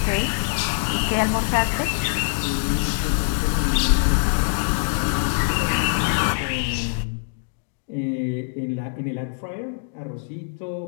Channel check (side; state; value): right; silent; digital silence